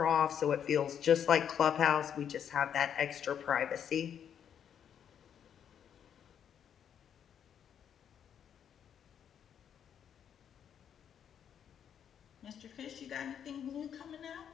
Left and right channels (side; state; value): right; quieter; 8.6 dB